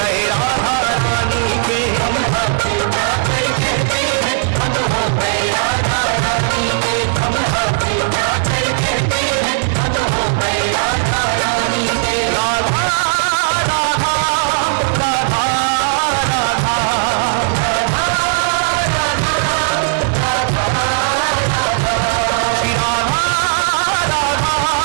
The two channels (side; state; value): left; silent; 70 dB below the other